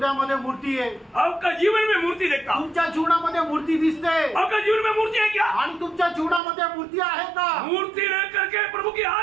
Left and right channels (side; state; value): left; drops out; at 6.4 s